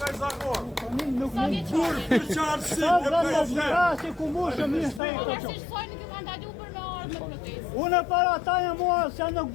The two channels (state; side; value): drops out; right; at 5.0 s